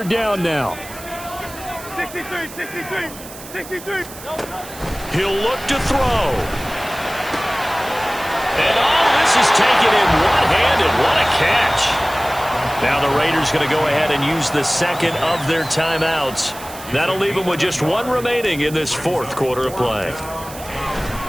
down now. 63. He'll look to throw. And all this is taken in one-handed. What a catch. Now the Raiders going to go ahead and use the second of their timeouts. That'll leave them with just one remaining in this 4th quarter of play.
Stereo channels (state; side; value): noise; right; hiss, 15 dB below the sound